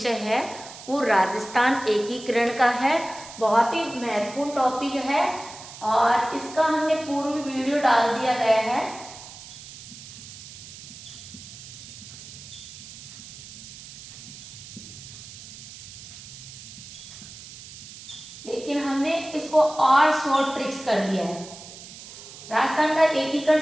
है वो राजस्थान एकीकरण का है। बहुत ही महत्वपूर्ण टॉपिक है और इसका हमने पूर्व वीडियो डाल दिया गया है। लेकिन हमने इसको और शॉर्ट ट्रिक्स कर दिया है। राजस्थान का एकीकरण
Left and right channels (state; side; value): noise; right; hiss, 15 dB below the sound